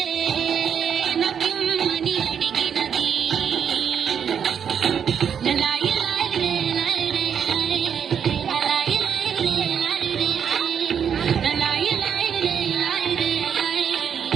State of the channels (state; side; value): quieter; left; 7.8 dB